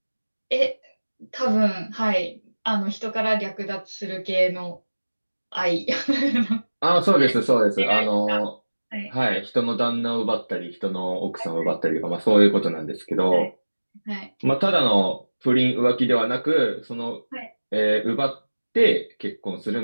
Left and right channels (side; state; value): both; inverted; correlation -1.00